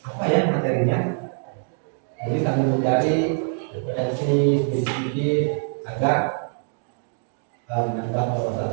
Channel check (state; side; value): silent; left; 57 dB below the other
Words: apa ya materinya. Jadi sambil mencari referensi sedikit agar menambah